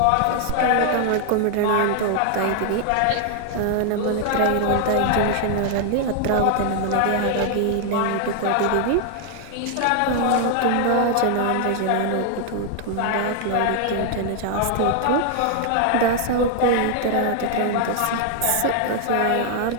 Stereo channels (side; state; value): both; different; correlation 0.00